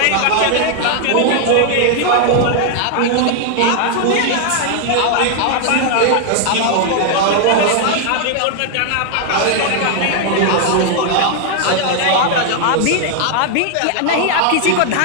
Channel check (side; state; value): both; different; correlation 0.00